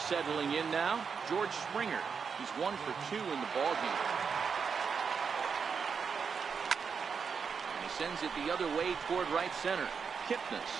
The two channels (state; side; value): quieter; left; 6.0 dB